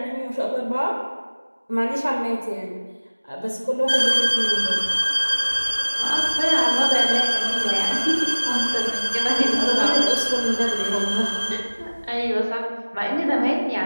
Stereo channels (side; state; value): both; inverted; correlation -1.00